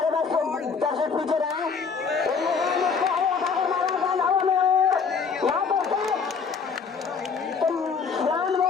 बैट्समैन दर्शक पीछे रहे।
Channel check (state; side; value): quieter; right; 5.6 dB